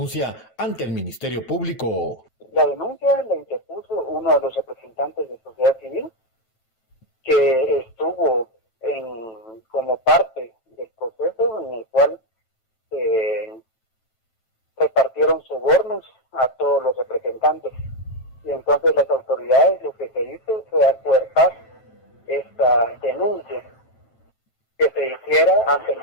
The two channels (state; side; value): late; right; 7.6 ms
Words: ante el Ministerio Público. La denuncia la interpuso uno de los representantes de sociedad civil que estuvo como parte del proceso en el cual repartieron sobornos a todos los representantes. Y entonces las autoridades lo que se hizo fue acuerpar esta denuncia que se hiciera ante el